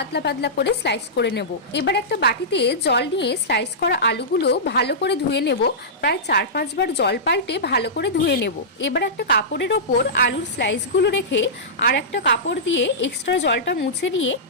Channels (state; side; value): normal; both; correlation -0.16